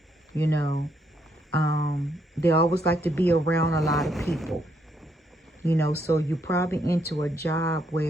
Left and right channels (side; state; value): both; normal; correlation 0.74